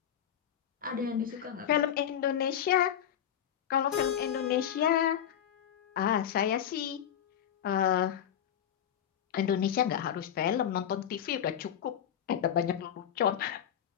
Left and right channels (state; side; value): quieter; right; 9.6 dB